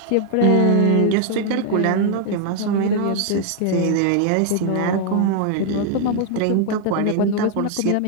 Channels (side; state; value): both; different; correlation 0.00